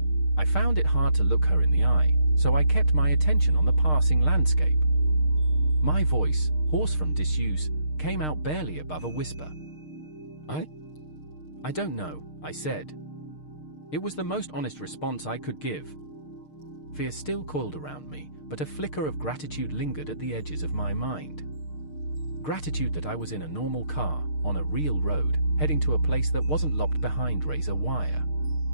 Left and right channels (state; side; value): late; right; 6.5 ms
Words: I found it hard to look her in the eye, so I kept my attention on the passing landscape. My voice, hoarse from disuse, came out barely above a whisper. I don't know, I said. It was the most honest response I could give. Fear still coiled around me, but a flicker of gratitude lingered at the edges of my mind. Gratitude that I was in a normal car, on a real road, heading to a place that wasn't locked behind razor wire.